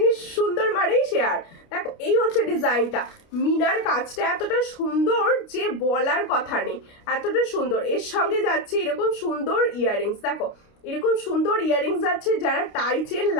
সুন্দর মানেই শেয়ার। দেখো, এই হচ্ছে ডিজাইনটা, মিনার কাজটা এতটা সুন্দর যে বলার কথা নেই, এতটা সুন্দর। এর সঙ্গে যাচ্ছে এরকম সুন্দর ইয়াররিংস, দেখো এরকম সুন্দর ইয়াররিংস যাচ্ছে। যারা টাইচেন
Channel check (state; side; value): late; right; 29 ms